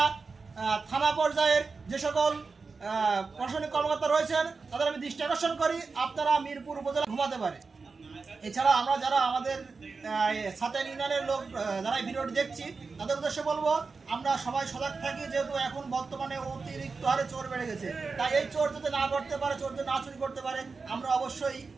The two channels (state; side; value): quieter; left; 4.5 dB